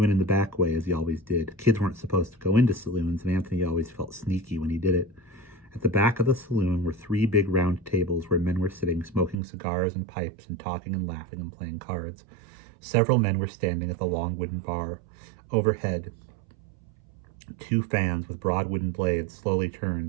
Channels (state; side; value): drops out; left; at 9.3 s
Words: in the back way as he always did. Kids weren't supposed to go into saloons, and Anthony always felt sneaky when he did it. At the back of the saloon were 3 big round tables where men were sitting, smoking cigars and pipes and talking and laughing and playing cards. Several men were standing at the long wooden bar. Overhead, 2 fans with broad wooden blades slowly